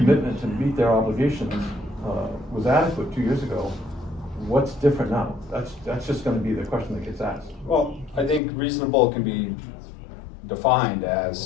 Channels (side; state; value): right; drops out; at 8.4 s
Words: to meet their obligations was adequate 2 years ago. What's different now? That's just going to be the question that gets asked. Well, I think reasonable can be defined